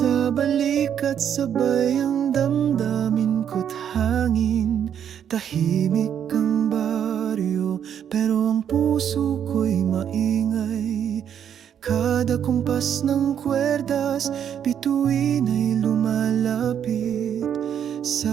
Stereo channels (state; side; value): quieter; left; 8.9 dB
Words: balikat, sabay ang damdamin ko't hangin. Tahimik ang baryo, pero ang puso ko'y maingay. Kada kumpas ng kwerdas, bituin ay lumalapit.